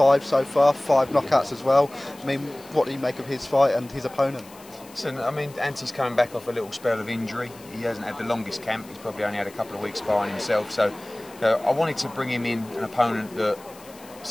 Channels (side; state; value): left; noise; hiss, 22 dB below the sound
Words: so far, 5 knockouts as well. I mean, what do you make of his fight and his opponent? Listen, I mean, Anti's coming back off a little spell of injury. He hasn't had the longest camp. He's probably only had a couple of weeks sparring himself. So I wanted to bring him in an opponent that